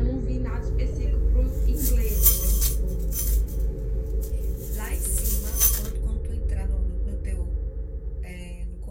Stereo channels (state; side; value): identical; both; correlation 1.00